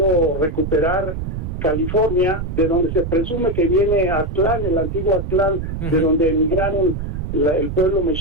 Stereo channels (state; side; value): noise; right; rumble, 5 dB below the sound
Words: recuperar California, de donde se presume que viene Aztlán, el antiguo Aztlán, de donde emigraron el pueblo